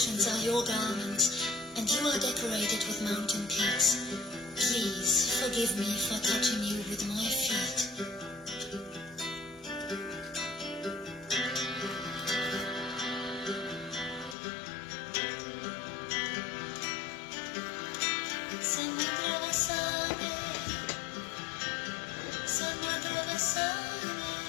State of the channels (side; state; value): right; drops out; at 14.4 s